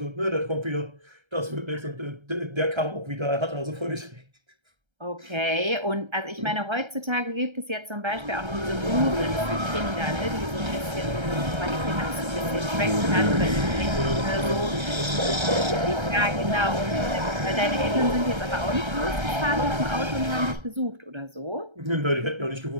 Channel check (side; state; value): left; late; 1.3 ms